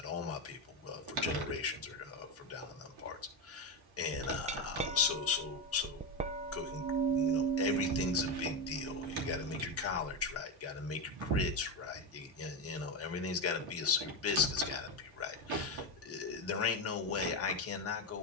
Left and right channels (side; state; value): both; normal; correlation 0.12